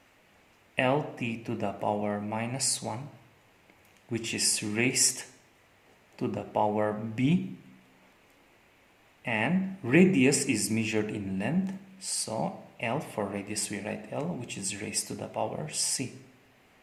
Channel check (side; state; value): both; identical; correlation 1.00